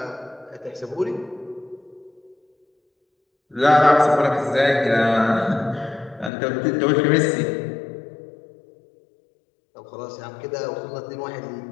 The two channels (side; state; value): right; drops out; at 6.3 s